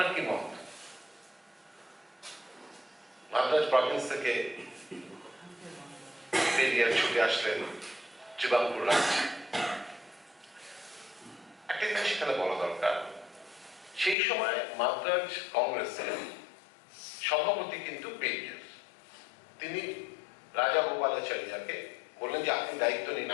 কি মত? মাদ্রাজ প্রভিন্স থেকে পেরিয়ার ছুটে আসলেন ত্রিবাঙ্কুর রাজ্যে। একটা জিনিস এখানে বলা দরকার, সেই সময় মাদ্রাজ কংগ্রেসের সভাপতি কিন্তু পেরিয়ার। তিনি রাজা গোপালাচারিয়াকে বললেন যে আপনি দায়িত্ব নিন,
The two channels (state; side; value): drops out; right; at 14.2 s